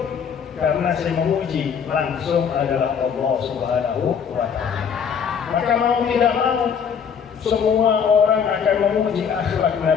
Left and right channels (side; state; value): right; quieter; 7.0 dB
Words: karena saya memuji langsung adalah Allah Subhanahu wa Ta'ala. Maka mau tidak mau semua orang akan memuji akhlak